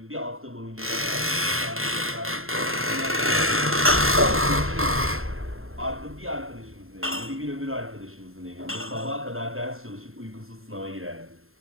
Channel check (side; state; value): left; late; 0.61 ms